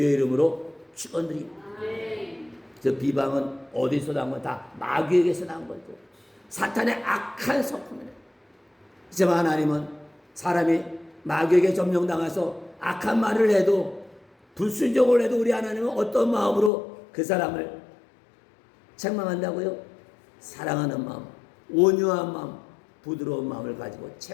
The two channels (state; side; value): drops out; right; at 16.7 s